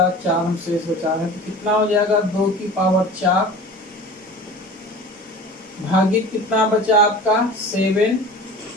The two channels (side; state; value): both; normal; correlation 0.38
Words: 4 हम शेष बचा रहे हैं, तो कितना हो जाएगा 2 की पावर 4 भागित कितना बचा आपका 7।